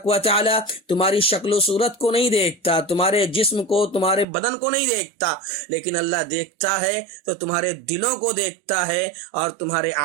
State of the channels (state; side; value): drops out; left; at 4.2 s